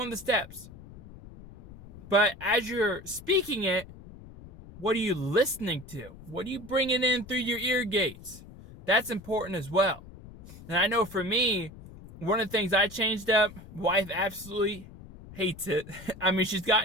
of the steps. But as you're speaking it, what are you listening to? What are you bringing in through your ear gates? That's important as well. And I know for me, one of the things I changed up, wife absolutely hates it. I mean, she's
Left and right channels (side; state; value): left; noise; rumble, 17 dB below the sound